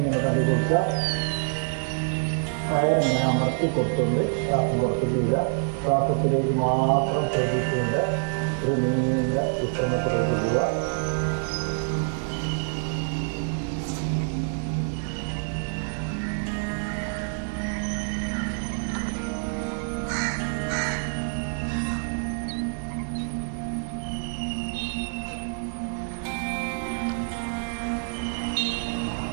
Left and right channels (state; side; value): silent; left; digital silence